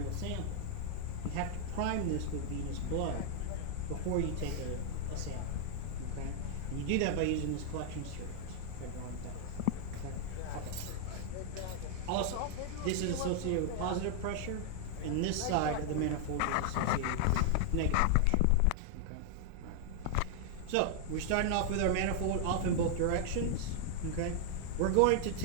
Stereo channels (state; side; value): different; both; correlation 0.00